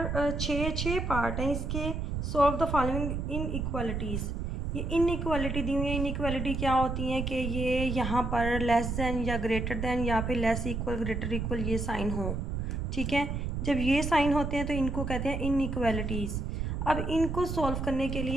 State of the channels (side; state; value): right; noise; rumble, 2 dB below the sound